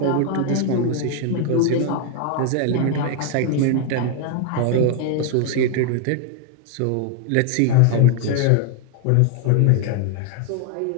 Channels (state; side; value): different; both; correlation 0.01